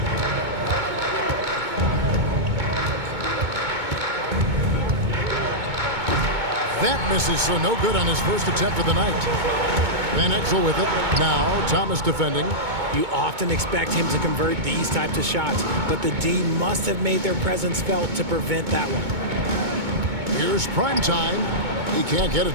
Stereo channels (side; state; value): left; late; 2.2 ms